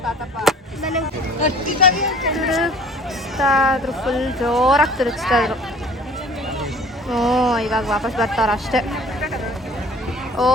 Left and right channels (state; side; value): normal; both; correlation 0.49